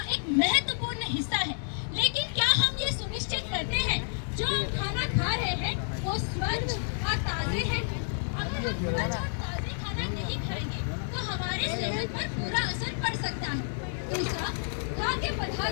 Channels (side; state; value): right; silent; digital silence